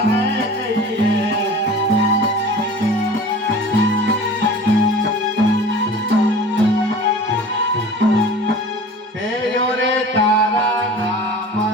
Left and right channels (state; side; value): normal; both; correlation 0.41